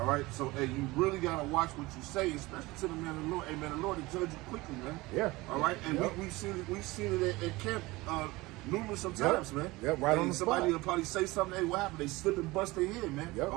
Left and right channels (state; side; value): quieter; left; 21.1 dB